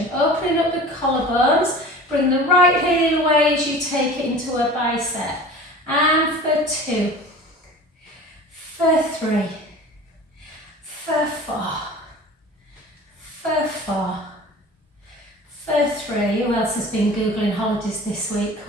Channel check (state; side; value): normal; both; correlation 0.39